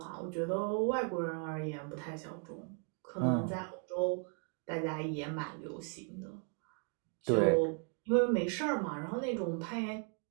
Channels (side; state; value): left; quieter; 37.2 dB